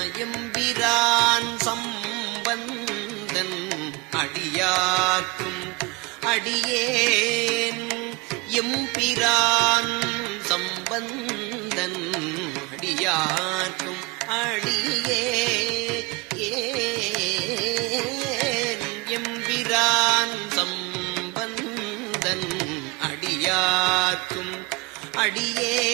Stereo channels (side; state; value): left; quieter; 26.2 dB